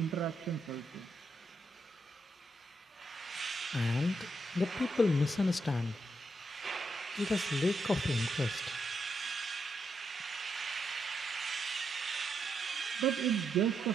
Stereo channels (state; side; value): normal; both; correlation 0.81